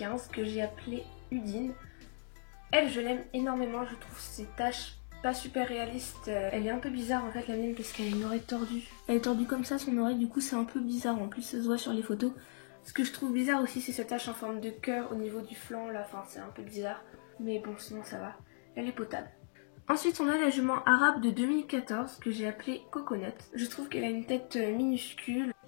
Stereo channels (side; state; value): right; silent; digital silence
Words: que j'ai appelée Udine. Elle je l'aime énormément, je trouve ses taches pas super réalistes. Elle est un peu bizarre en fait la mienne parce qu'elle a une oreille tordue. Elle est tordue comme ça son oreille, du coup c'est un peu bizarre, en plus ça se voit sur les photos. Ce que je trouve bizarre aussi c'est cette tache en forme de cœur au niveau du flanc là, enfin c'est un peu bizarre. Mais bon sinon ça va, elle est potable. Ensuite on a la jument arabe de 2014 que j'ai appelée Coconut. Je trouve qu'elle a une tête minuscule.